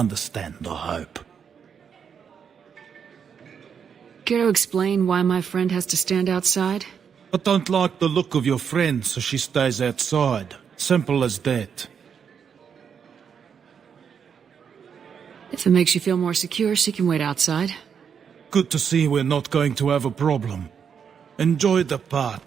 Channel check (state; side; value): quieter; left; 7.1 dB